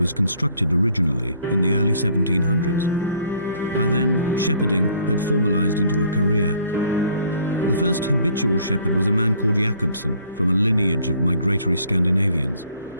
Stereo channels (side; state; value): both; inverted; correlation -0.60